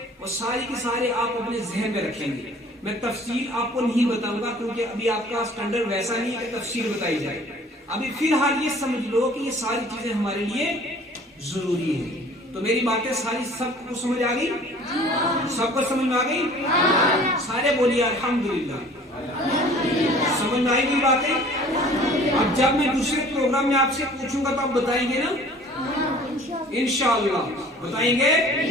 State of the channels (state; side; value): normal; both; correlation 0.50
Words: وہ ساری کے سارے آپ اپنے ذہن میں رکھیں گے. میں تفصیل آپ کو نہیں بتاؤں گا کیونکہ ابھی آپ کا سٹینڈرڈ ویسا نہیں ہے کہ تفصیل بتائی جائے. ابھی فی الحال یہ سمجھ لو کہ یہ ساری چیزیں ہمارے لیے ضروری ہیں. تو میری باتیں ساری سب کو سمجھ آ گئی؟ سب کو سمجھ میں آ گئی؟ سارے بولیے الحمدللہ. سمجھ میں آئی گئی باتیں؟ اب جب میں دوسرے پروگرام میں آپ سے پوچھوں گا تو آپ بتائیں گے نا؟ انشاءاللہ بتائیں گے؟